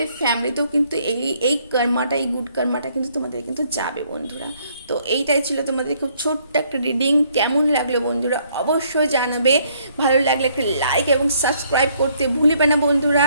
ফ্যামিলিতেও কিন্তু এই কর্মাটা, এই গুড কর্মাটা কিন্তু তোমাদের কিন্তু যাবে বন্ধুরা। তো এইটাই ছিল তোমাদের খুব ছোট্ট একটা রিডিং। কেমন লাগলো বন্ধুরা অবশ্যই জানাবে, ভালো লাগলে একটা লাইক এবং সাবস্ক্রাইব করতে ভুলবে না বন্ধুরা।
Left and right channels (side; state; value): both; inverted; correlation -0.67